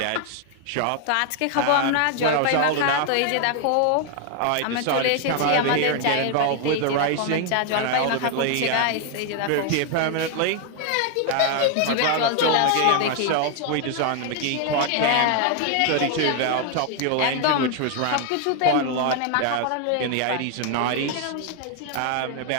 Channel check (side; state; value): both; different; correlation 0.00